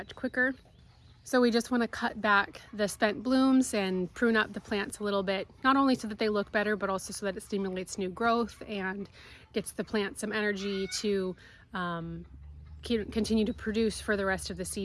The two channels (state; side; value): identical; both; correlation 1.00